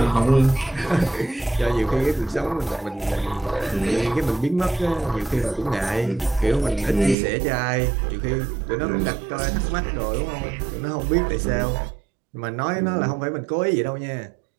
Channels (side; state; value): left; drops out; at 7.2 s